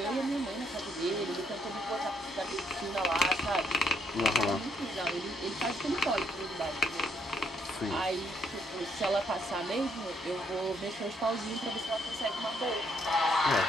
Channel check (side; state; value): both; normal; correlation 0.72